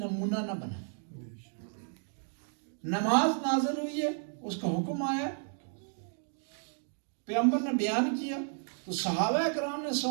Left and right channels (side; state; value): left; silent; 56 dB below the other